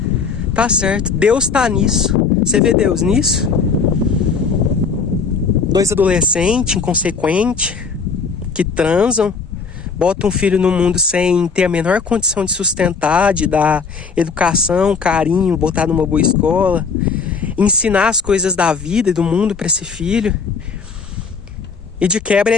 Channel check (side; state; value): right; quieter; 5.3 dB